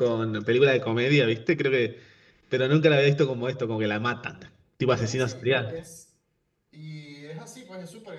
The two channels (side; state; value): both; identical; correlation 1.00